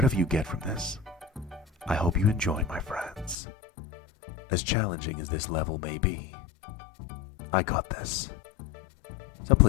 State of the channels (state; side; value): drops out; right; at 3.4 s